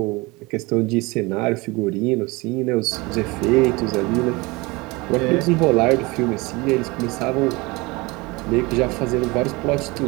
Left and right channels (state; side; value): quieter; left; 24.3 dB